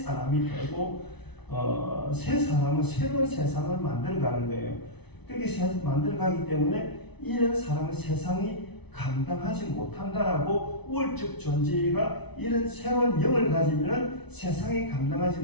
되고 새 사람은 새로운 세상을 만들어가는 거예요. 그렇게 만들어가기 때문에 이런 사람은 세상이 감당하지 못한다라고 우월적 존재가 이런 새로운 영을 가지면 세상에 감당하지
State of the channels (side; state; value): right; late; 0.99 ms